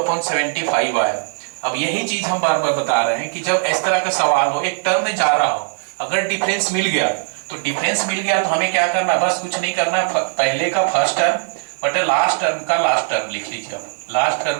आया। अब यही चीज हम बार बार बता रहे हैं कि जब इस तरह का सवाल हो, एक टर्म में जा रहा हो, अगर डिफरेंस मिल गया तो डिफरेंस मिल गया तो हमें क्या करना है, बस कुछ नहीं करना है, पहले का फर्स्ट टर्म बटे लास्ट टर्म का लास्ट टर्म लिख लीजिए। अब लास्ट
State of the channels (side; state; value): left; silent; digital silence